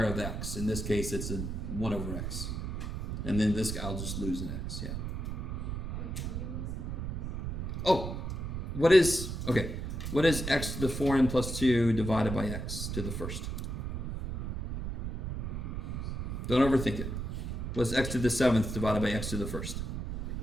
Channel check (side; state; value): right; noise; rumble, 4 dB below the sound